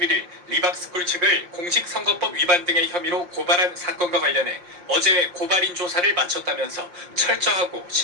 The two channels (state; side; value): late; left; 5.7 ms